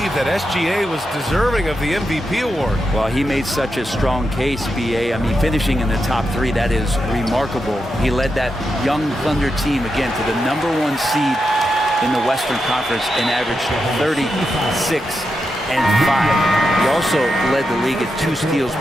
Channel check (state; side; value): normal; both; correlation 0.87